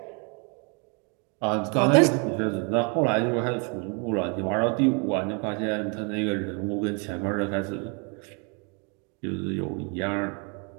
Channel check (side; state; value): left; quieter; 34.8 dB